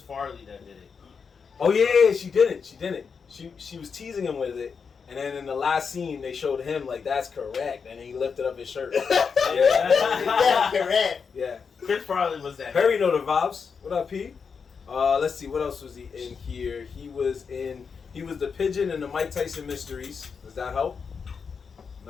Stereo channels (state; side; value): quieter; right; 5.8 dB